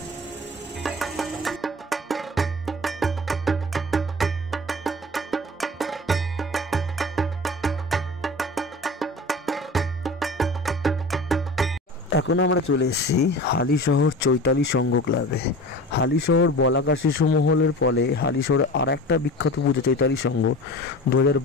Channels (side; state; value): both; normal; correlation 0.36